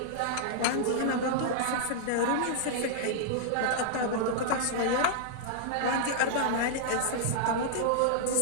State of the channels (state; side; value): different; both; correlation -0.01